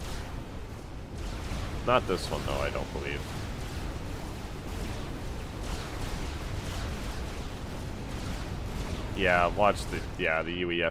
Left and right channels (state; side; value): identical; both; correlation 1.00